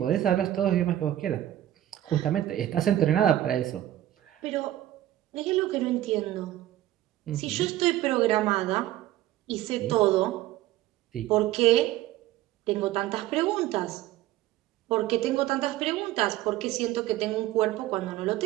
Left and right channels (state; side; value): quieter; left; 13.9 dB